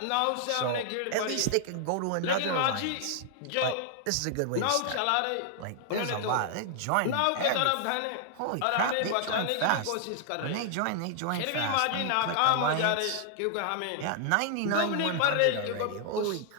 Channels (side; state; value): both; different; correlation 0.00